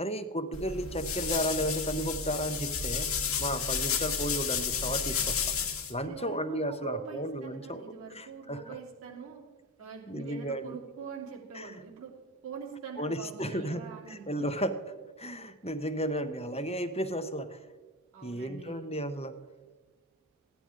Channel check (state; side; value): normal; both; correlation 0.22